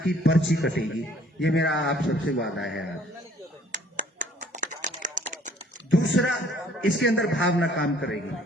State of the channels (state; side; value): normal; both; correlation 0.58